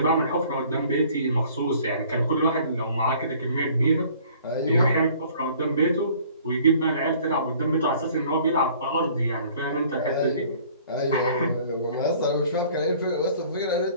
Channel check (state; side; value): inverted; both; correlation -0.54